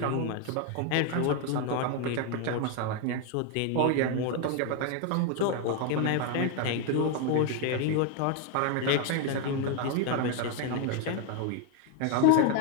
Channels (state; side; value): different; both; correlation 0.01